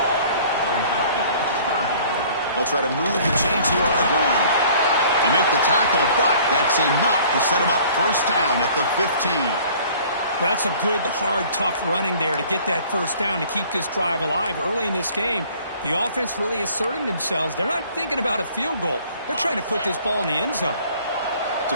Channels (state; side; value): inverted; both; correlation -0.52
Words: They'll try to move the chains here on the ground. They make the tackle, but that's enough to set them up first down at the 15. Well, that's a good, hard, tough running there to get that first down to keep this drive alive. Early in this game, the offense really asserting themselves. They're not thinking about a field goal. They're trying to put this ball in the end zone. It's